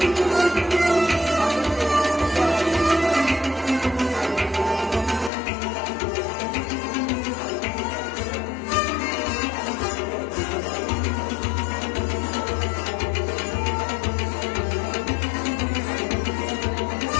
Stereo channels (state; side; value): drops out; right; at 5.3 s